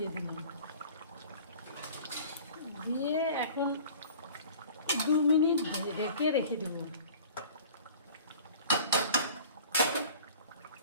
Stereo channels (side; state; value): both; inverted; correlation -0.45